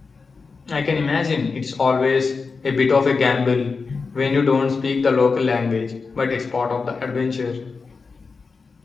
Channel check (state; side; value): quieter; right; 4.6 dB